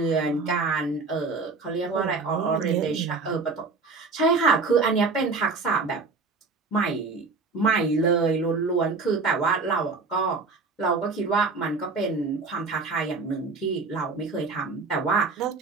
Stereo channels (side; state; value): left; quieter; 4.2 dB